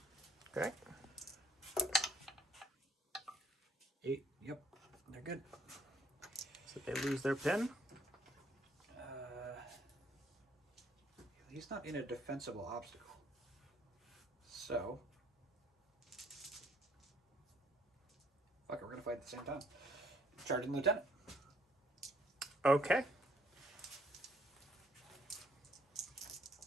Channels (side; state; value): both; normal; correlation 0.65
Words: Okay. 8. Yep. They're good. So they lose their pin. He's not in a defensible obstacle. So. Fuck it, we're gonna fight at the same time. Charging lieutenant. Okay.